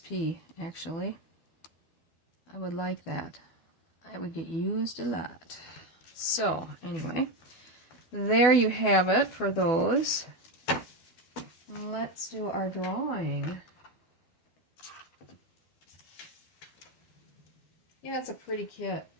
actually. I would like that. I would get used a lot. So, anyway, there you have it for those. Let's do our drawing. Yeah, it's a pretty kit.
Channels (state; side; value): late; right; 12 ms